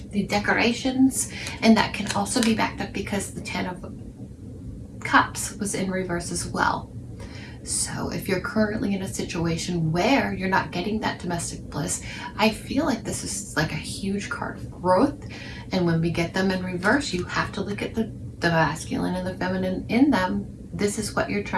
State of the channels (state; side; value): identical; both; correlation 1.00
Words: the decorations, and that can also be backed up because the Ten of Cups was in reverse as well. So if you're currently in a situation where you're not getting that domestic bliss, I feel like this is like a huge card of growth. And when we get them in reverse, you have to look at the masculine and the feminine in them. This is what you're